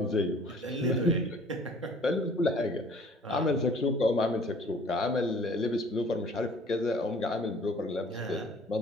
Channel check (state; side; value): normal; both; correlation 0.52